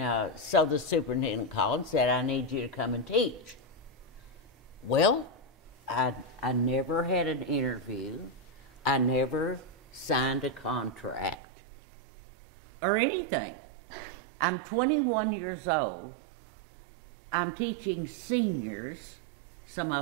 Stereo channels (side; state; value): left; drops out; at 11.4 s